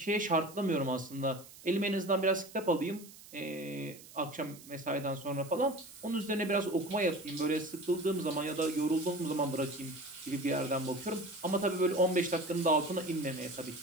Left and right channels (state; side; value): noise; right; hiss, 19 dB below the sound